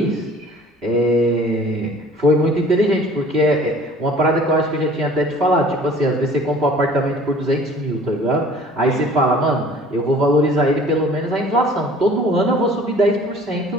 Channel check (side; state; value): both; normal; correlation 0.50